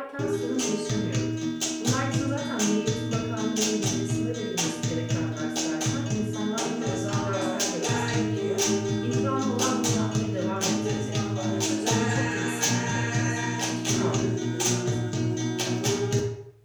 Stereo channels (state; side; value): identical; both; correlation 1.00